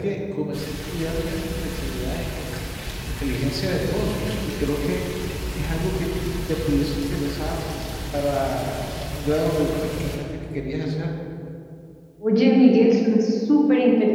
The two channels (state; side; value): identical; both; correlation 1.00